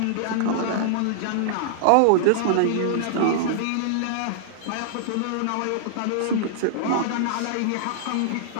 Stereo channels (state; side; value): different; both; correlation -0.01